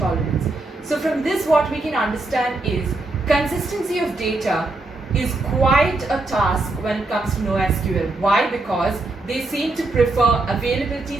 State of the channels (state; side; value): quieter; left; 3.1 dB